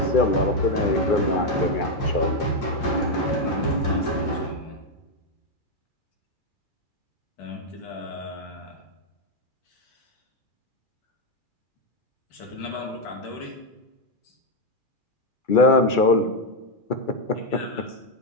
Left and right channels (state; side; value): late; right; 2.4 ms